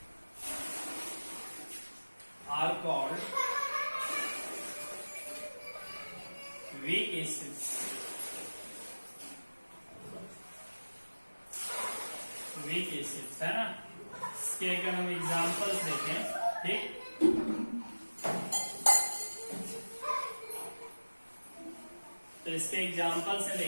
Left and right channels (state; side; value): inverted; both; correlation -1.00